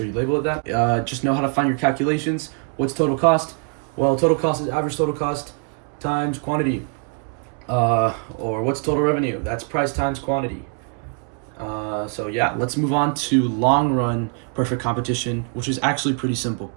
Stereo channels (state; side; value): quieter; left; 39.9 dB